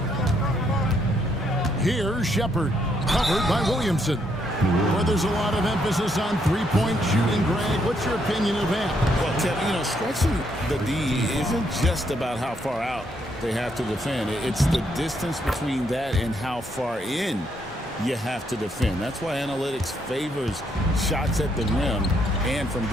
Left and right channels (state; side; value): normal; both; correlation 0.74